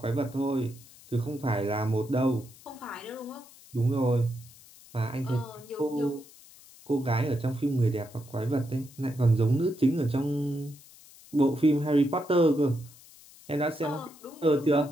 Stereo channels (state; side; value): noise; left; hiss, 22 dB below the sound